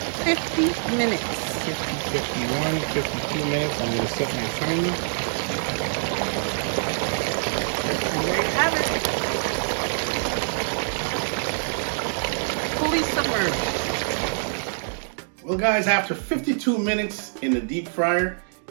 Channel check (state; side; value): silent; left; digital silence